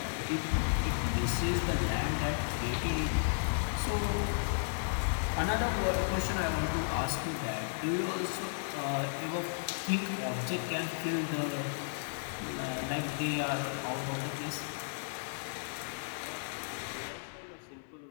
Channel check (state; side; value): silent; right; 55 dB below the other